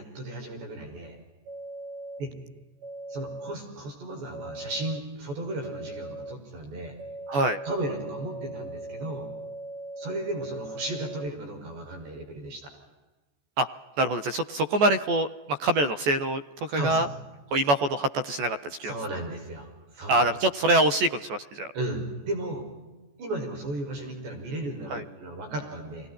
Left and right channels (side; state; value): left; late; 14 ms